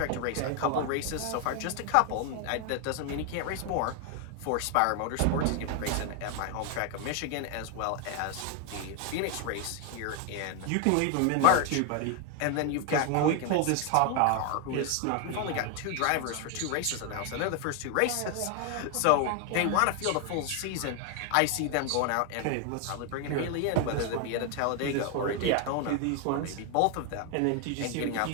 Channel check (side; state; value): both; different; correlation 0.01